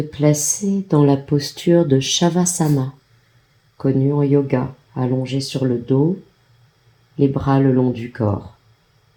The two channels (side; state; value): both; identical; correlation 1.00